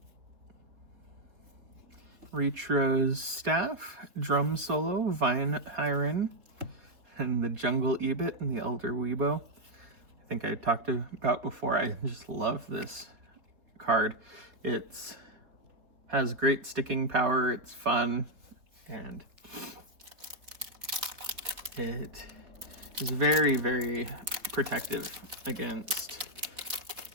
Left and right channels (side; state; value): left; late; 3.9 ms